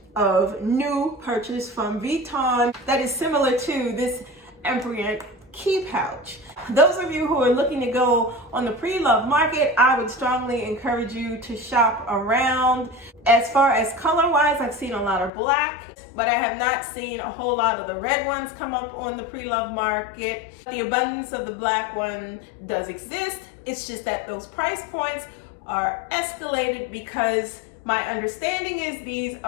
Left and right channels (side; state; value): right; drops out; at 15.3 s